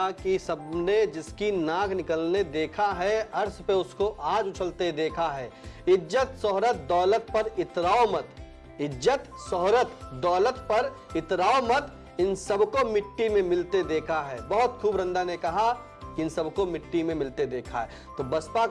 कि सबने जिसकी नाक निकलने देखा है, अर्श पे उसको आज उछलते देखा है। इज्जत शोहरत दौलत पर इतराओ मत, इज्जत शोहरत दौलत पर इतराओ मत, इन सबको मिट्टी में मिलते देखा है। बहुत खूब रंदा ने कहा कि इन सबको मिट्टी में मिलते देखा है। तो बसपा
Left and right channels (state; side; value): identical; both; correlation 1.00